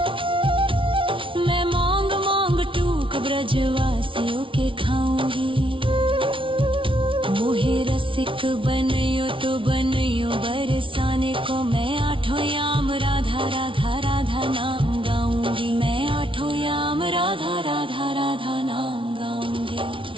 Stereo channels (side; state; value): left; late; 0.25 ms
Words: मैं मांग मांग टूक ब्रजवासियों के खाऊंगी। मोहे रसिक बनियो तो बनियो बरसाने को, मैं आठों याम राधा राधा राधा नाम गाऊंगी, मैं आठों याम राधा राधा राधा नाम गाऊंगी।